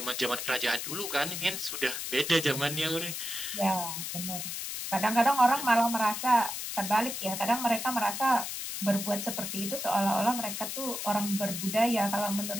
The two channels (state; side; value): noise; left; hiss, 5 dB below the sound